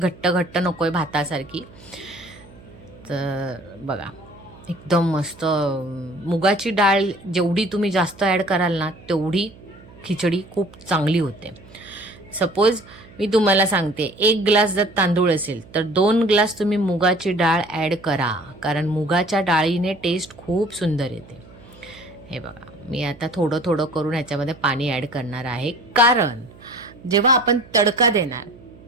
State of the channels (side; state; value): right; noise; hum, 22 dB below the sound